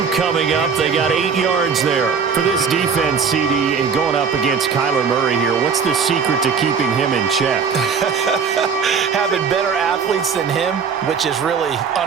coming up. They got 8 yards there. For this defense, CD, and going up against Kyler Murray here, what's the secret to keeping him in check? Having better athletes than him, which is really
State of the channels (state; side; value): quieter; left; 6.1 dB